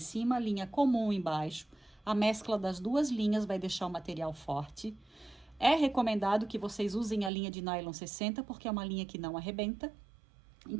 linha comum embaixo. A mescla das duas linhas vai deixar o material forte. É recomendado que vocês usem a linha de nylon 60, porque é uma linha que não arrebenta.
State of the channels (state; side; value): drops out; left; at 7.3 s